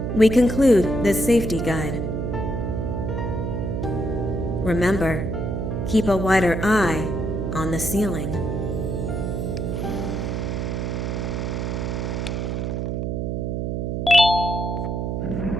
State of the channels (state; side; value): noise; right; hum, 1 dB below the sound